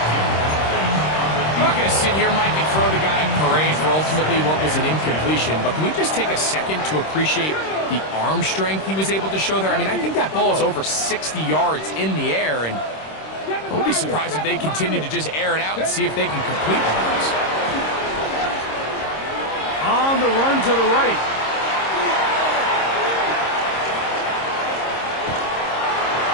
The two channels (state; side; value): late; right; 26 ms